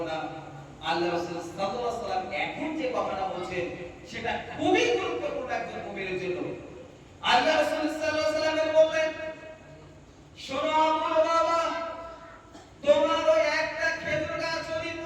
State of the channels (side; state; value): both; identical; correlation 1.00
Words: না। আল্লাহ রাসূল সাল্লাল্লাহু আলাইহি ওয়াসাল্লাম এখন যে কথাটা বলছেন, সেটা খুবই গুরুত্বপূর্ণ একজন মুমিনের জন্য। আল্লাহ রাসূল সাল্লাল্লাহু আলাইহি ওয়াসাল্লাম বললেন, শোনো আবুল বাবা, তোমার ওই একটা খেজুর গাছ যদি